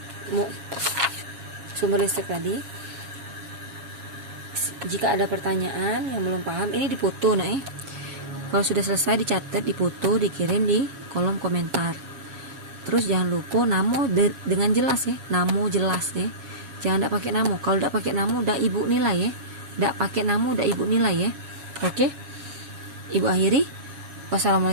sumber listrik tadi. Jika ada pertanyaan yang belum paham, ini difoto nah kalau sudah selesai dicatat, difoto, dikirim di kolom komentar. Terus jangan lupa namo dengan jelas ya, namo jelas ya, jangan tidak pakai namo. Kalau tidak pakai namo udah ibu nilai ya, tidak pakai namo udah ibu nilai ya. Oke, ibu akhiri.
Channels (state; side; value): late; left; 7.3 ms